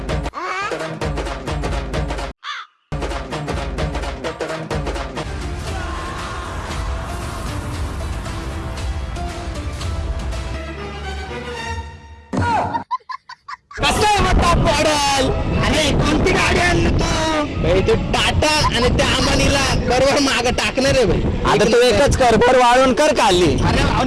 कसं आहे मग टॉप मॉडेल? आणि कोणती गाडी आणली तू? टाटा आणि त्या अंबानीला बरोबर माग टाकणार आहे भाई. आता तू एकच कर, भर वाळून कर खाली. अरे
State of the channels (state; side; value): identical; both; correlation 1.00